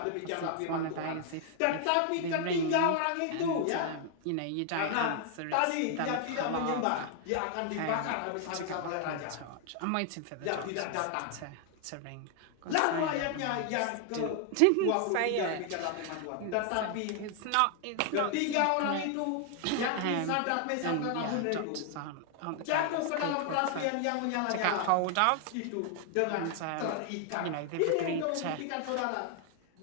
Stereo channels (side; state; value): both; different; correlation 0.00